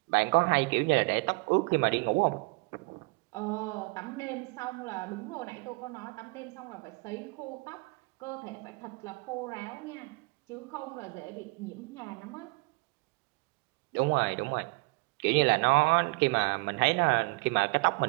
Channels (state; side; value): quieter; left; 27.8 dB